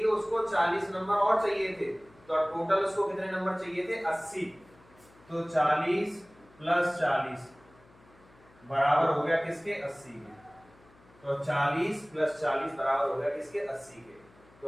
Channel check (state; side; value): noise; left; hum, 28 dB below the sound